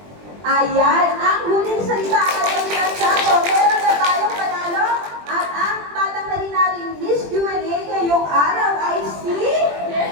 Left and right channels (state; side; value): late; left; 20 ms